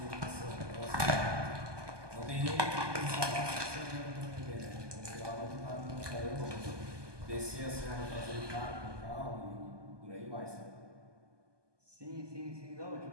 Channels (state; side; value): late; left; 1.2 ms